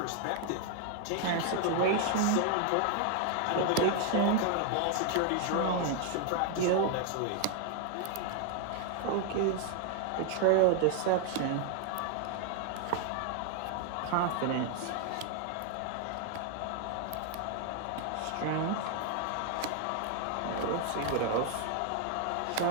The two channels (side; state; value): both; different; correlation 0.00